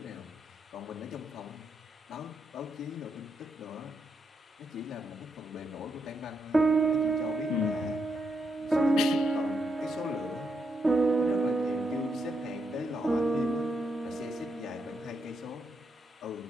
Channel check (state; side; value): normal; both; correlation 0.80